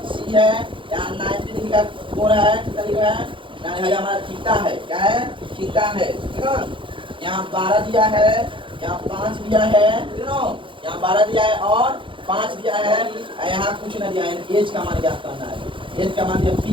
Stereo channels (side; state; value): left; late; 0.25 ms